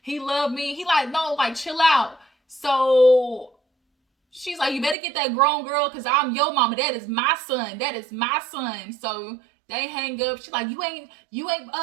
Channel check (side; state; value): left; drops out; at 5.0 s